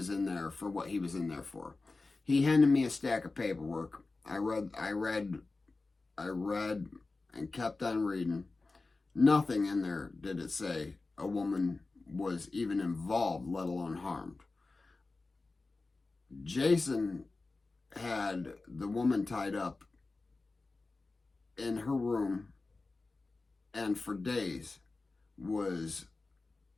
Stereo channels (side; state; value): right; quieter; 3.6 dB